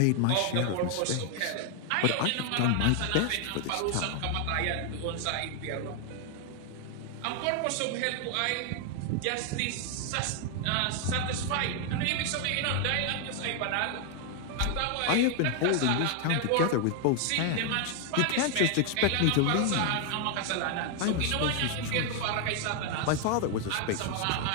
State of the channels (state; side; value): different; both; correlation 0.00